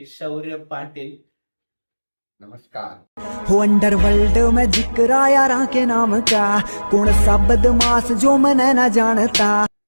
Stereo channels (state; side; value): inverted; both; correlation -1.00